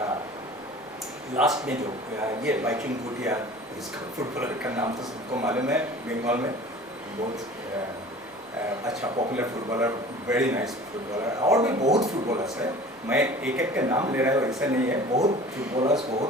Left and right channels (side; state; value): both; normal; correlation 0.43